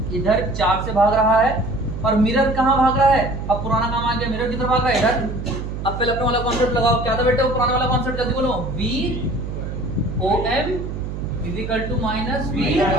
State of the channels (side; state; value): right; noise; hum, 6 dB below the sound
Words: इधर 4 से भाग रहा है और मिरर कहाँ भाग रहा है, अब पुराना काम आ गया, मिरर किधर भाग रहा है इधर। अब पहले अपने वाला कॉन्सेप्ट लगाओ, क्या था बेटा वो पुराना वाला कॉन्सेप्ट, जल्दी बोलो, VOM =